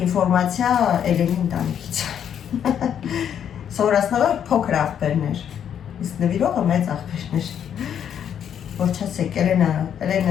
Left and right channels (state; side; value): quieter; right; 8.9 dB